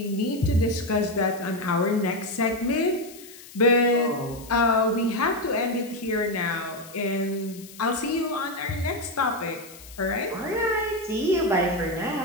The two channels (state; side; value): noise; left; hiss, 18 dB below the sound